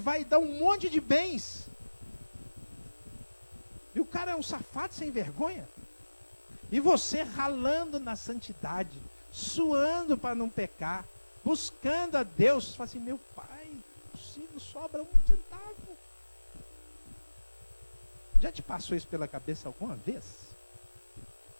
dar um monte de bens. E o cara é um safado sem vergonha. E você ralando na santidade, suando para não pecar, buscando a Deus, fala assim, meu pai, possível, sobra 1 centavo. Já te passou isso pela cabeça alguma vez?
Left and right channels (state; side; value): inverted; both; correlation -1.00